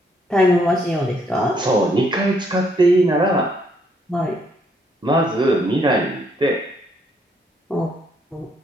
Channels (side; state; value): both; normal; correlation 0.70